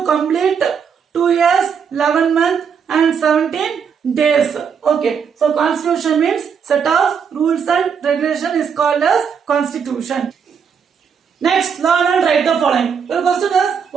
complete 2 years, 11 months and 17 days. Okay. So constitution means set of rules and regulation is called as constitution. Next, learn and write the following. The question is,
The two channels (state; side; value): quieter; left; 6.8 dB